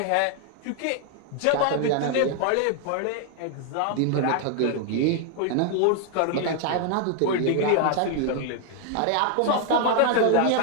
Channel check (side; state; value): both; different; correlation 0.00